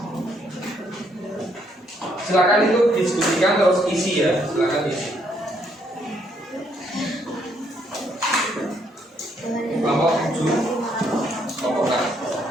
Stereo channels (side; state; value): both; normal; correlation 0.71